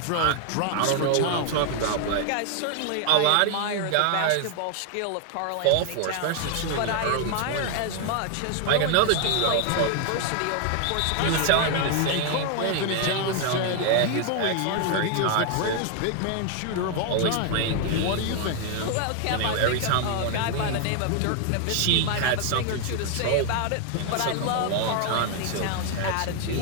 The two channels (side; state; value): both; different; correlation 0.00